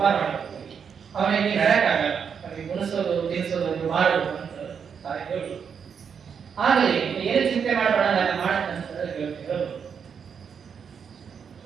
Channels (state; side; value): quieter; left; 6.9 dB